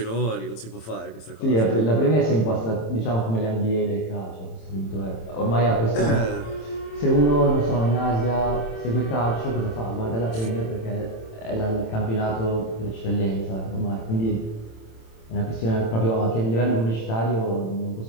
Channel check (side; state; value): right; late; 27 ms